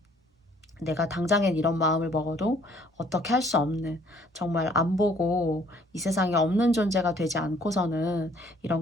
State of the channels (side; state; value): both; normal; correlation 0.60